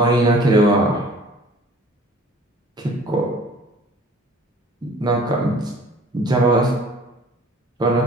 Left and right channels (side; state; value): both; normal; correlation 0.49